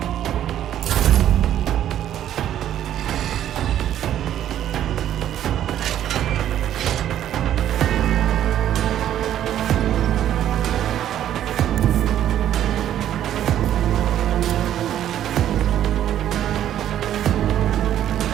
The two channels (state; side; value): quieter; left; 11.2 dB